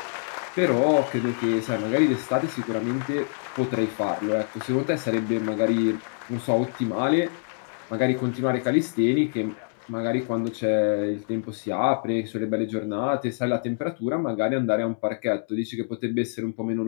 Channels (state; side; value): silent; right; digital silence